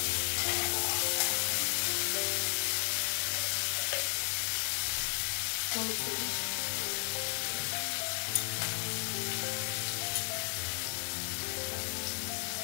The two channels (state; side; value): silent; right; digital silence